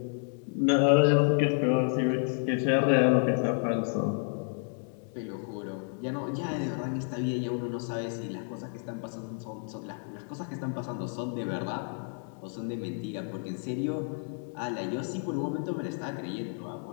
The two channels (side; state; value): right; silent; 57 dB below the other